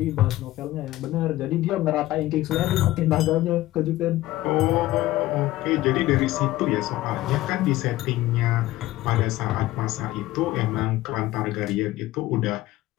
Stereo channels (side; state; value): right; quieter; 16.4 dB